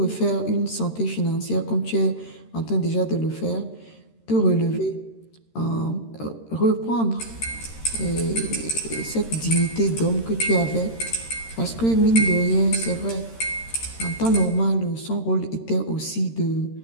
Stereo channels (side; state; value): right; late; 13 ms